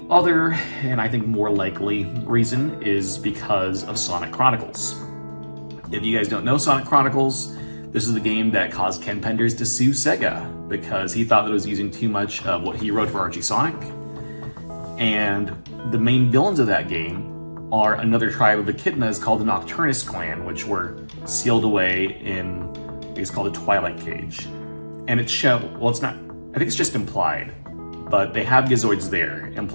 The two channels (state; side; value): inverted; both; correlation -1.00